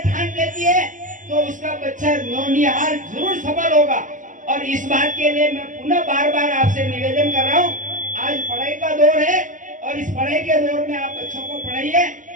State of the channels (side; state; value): left; late; 0.37 ms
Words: ठान लेती है तो उसका बच्चा नौनिहाल जरूर सफल होगा। और इस बात के लिए मैं पुनः बार बार आपसे निवेदन कर रहा हूँ, आज पढ़ाई का दौर है और इस पढ़ाई के दौर में आप बच्चों को पढ़ाइए।